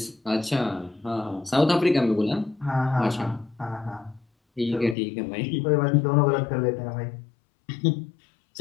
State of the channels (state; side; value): drops out; right; at 5.0 s